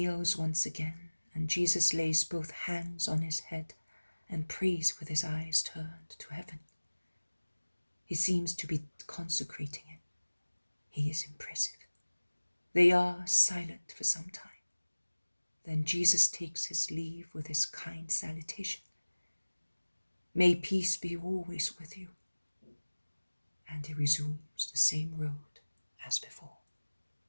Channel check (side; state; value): both; inverted; correlation -1.00